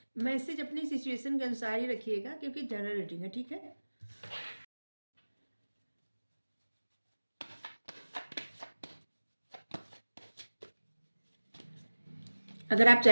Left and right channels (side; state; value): both; inverted; correlation -1.00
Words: मैसेज अपनी सिचुएशन के अनुसार ही रखिएगा क्योंकि जनरल रीडिंग है। ठीक है, अगर आप